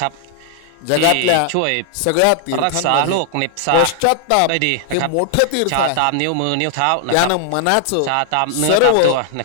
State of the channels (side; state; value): both; different; correlation 0.00